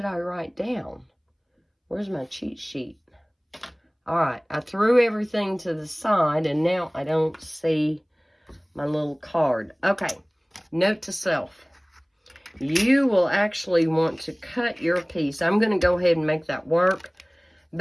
I write down? Where's my cheat sheet? All right, I threw everything to the side, and now I don't see my little card. Okay, note to self. you will actually want to cut your piece. I'm going to go ahead and make that work.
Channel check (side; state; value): both; identical; correlation 1.00